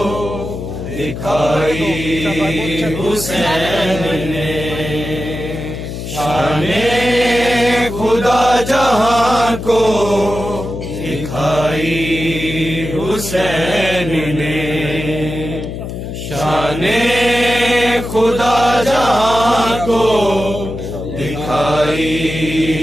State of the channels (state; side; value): noise; left; hum, 7 dB below the sound